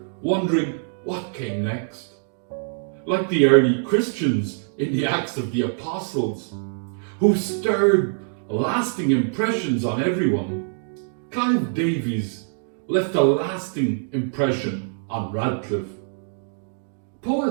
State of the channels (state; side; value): silent; left; digital silence